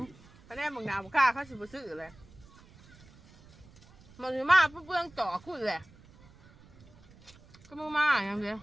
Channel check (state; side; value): noise; right; rumble, 24 dB below the sound